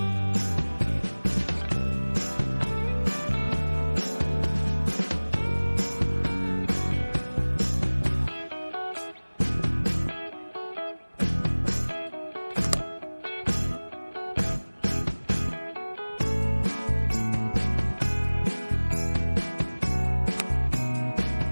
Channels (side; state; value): both; inverted; correlation -1.00